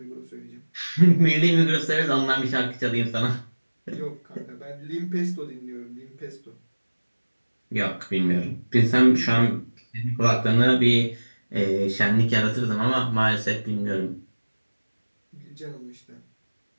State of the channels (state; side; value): inverted; both; correlation -1.00